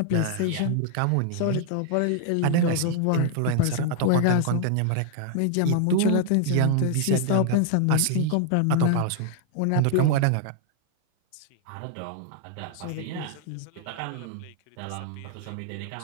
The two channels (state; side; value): different; both; correlation 0.00